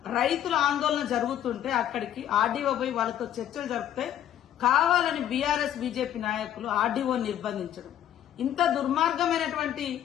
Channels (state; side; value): quieter; right; 11.0 dB